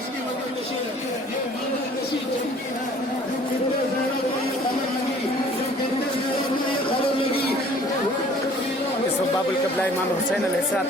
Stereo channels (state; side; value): normal; both; correlation 0.53